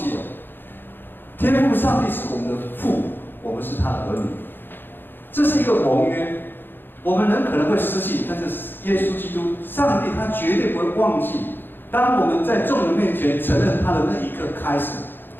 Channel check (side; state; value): right; late; 0.098 ms